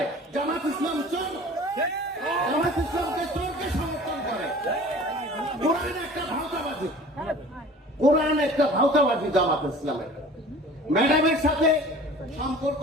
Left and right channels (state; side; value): normal; both; correlation 0.44